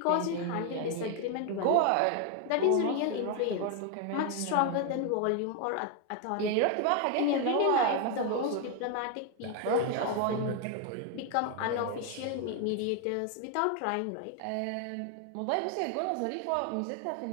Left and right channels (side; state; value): both; different; correlation 0.01